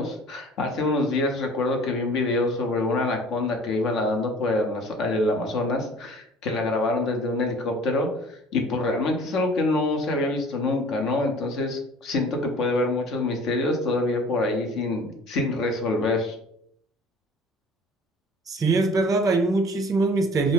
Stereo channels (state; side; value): normal; both; correlation 0.48